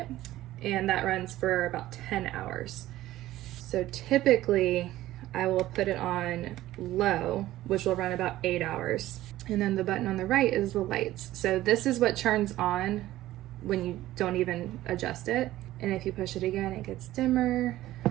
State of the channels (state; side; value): quieter; left; 15.2 dB